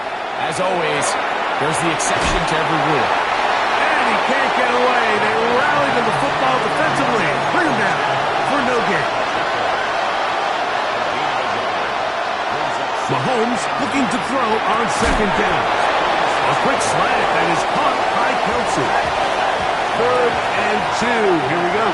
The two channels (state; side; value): identical; both; correlation 1.00